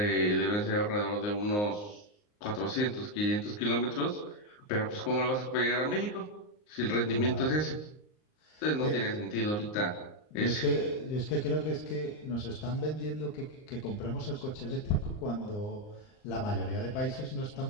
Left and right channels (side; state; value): right; late; 39 ms